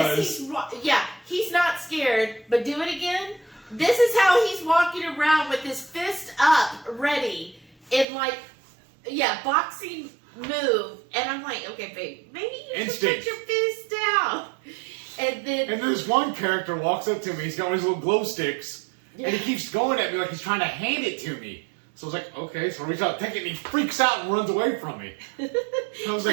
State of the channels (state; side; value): drops out; left; at 8.1 s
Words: Yes, he's not scared, but do it again. This is how he's walking around with his fist up, ready, in boxing move. And I'm like, okay, babe, maybe you should put your fist down. And this one character walks up to me, he's got one of his little glow sticks, and he keeps going at me like he's trying to hand it to me. So I was like, okay, so I reach out, take it, and he freaks out and runs away from me. I was